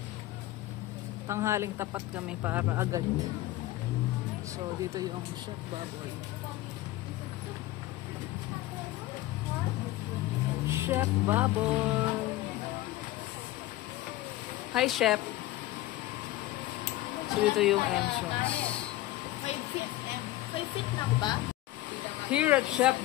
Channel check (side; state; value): right; quieter; 16.0 dB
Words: Tanghaling tapat kami para agad. So, dito yung Chef Baboy. Chef Baboy. Hi, Chef. So, dito yung entrance. 5 feet na ba? Here at Chef